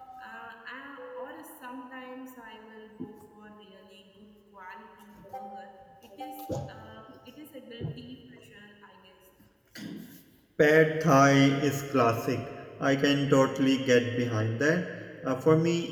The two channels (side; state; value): both; identical; correlation 1.00